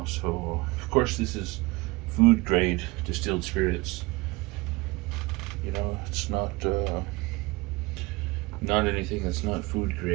So of course this is food grade distilled spirits. You know, it's not anything that's not food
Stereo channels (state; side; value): quieter; left; 22.9 dB